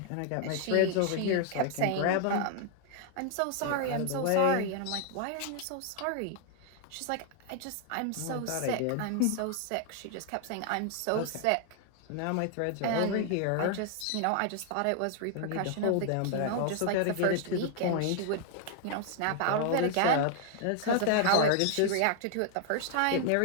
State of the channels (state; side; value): different; both; correlation 0.00